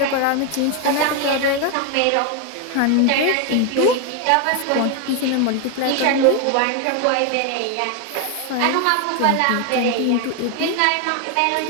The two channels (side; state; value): both; different; correlation 0.01